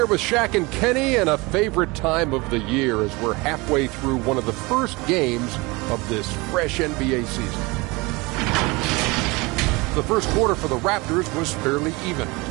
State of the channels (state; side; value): quieter; left; 24.7 dB